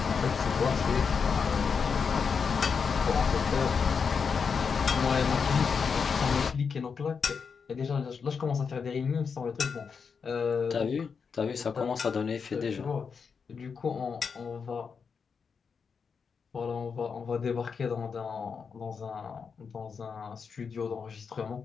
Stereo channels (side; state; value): right; quieter; 5.9 dB